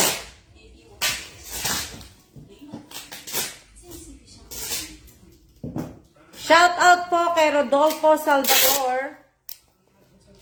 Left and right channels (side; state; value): both; identical; correlation 1.00